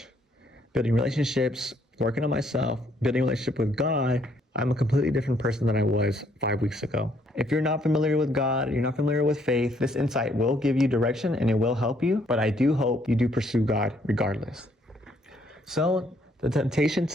building relationships, working on myself, building a relationship with God. I'm a completely different person than I was 5 weeks ago. If you're not familiar with God, you're not familiar with faith, this insight will give you direction and it will help you. But I do hope you do pursue God regardless. So the temptation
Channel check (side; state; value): both; normal; correlation 0.68